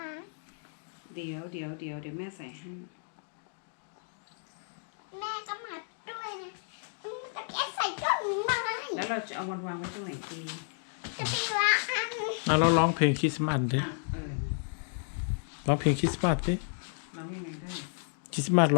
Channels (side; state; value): right; silent; digital silence